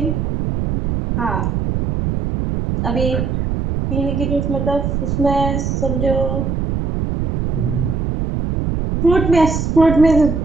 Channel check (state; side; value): noise; right; rumble, 1 dB below the sound